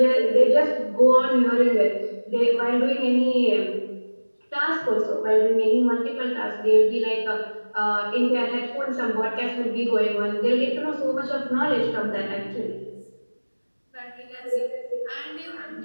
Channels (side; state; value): both; inverted; correlation -1.00